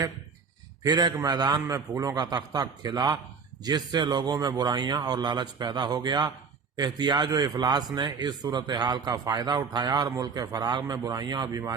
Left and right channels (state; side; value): quieter; left; 5.5 dB